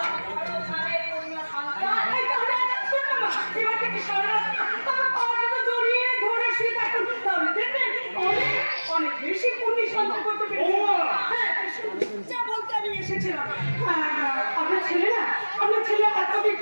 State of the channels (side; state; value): both; inverted; correlation -1.00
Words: পূর্ণ সন্তান। এবার থেকে সারা তোমার পাওয়াটা জড়িয়ে ধরে শুয়ে থাকুন, তাহলে দেখবেন অনেক অনেক বেশি পুণ্য সঞ্চয় করতে পেরেছি। হ্যাঁ, যা বলতে আমি এসেছিলাম। আপনার ছেলে না, আপনার ছেলে এতদিন